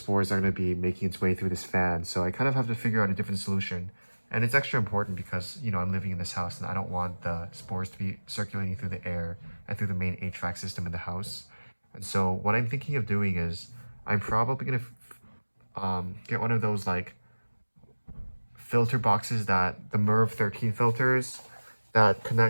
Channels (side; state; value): both; inverted; correlation -1.00